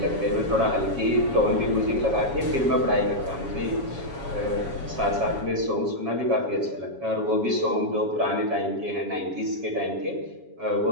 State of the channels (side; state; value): left; late; 7.2 ms